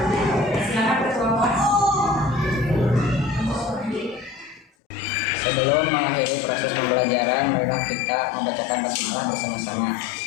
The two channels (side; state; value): right; drops out; at 4.7 s